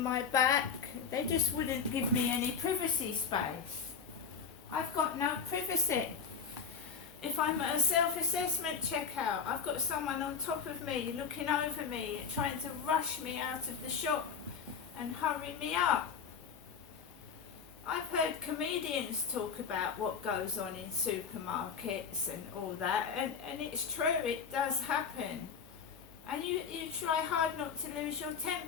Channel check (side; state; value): right; quieter; 6.1 dB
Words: back. They just wouldn't give me any privacy space. I've got no privacy. If I'm at a self-assessment checkout, I've got someone on top of me, looking over me and trying to rush me out of the shop and hurry me up. I've heard comedians talk about what goes on in supermarkets and all that, and it's true, it does happen. And you try hard not to lose your